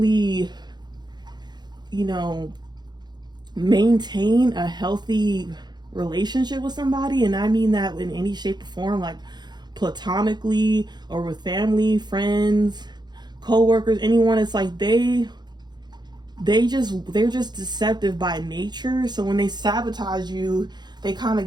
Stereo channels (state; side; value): late; left; 0.21 ms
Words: maintain a healthy relationship with somebody. And I mean that in any shape or form, like platonically or with friends, co-workers, anyone. It's like they're just deceptive by nature. So when they sabotage you, they kind of